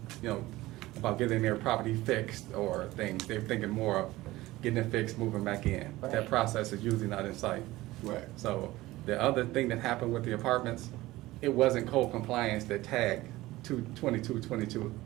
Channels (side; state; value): left; quieter; 18.0 dB